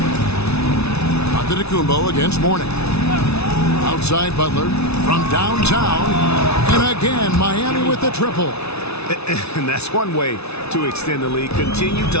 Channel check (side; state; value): right; late; 0.80 ms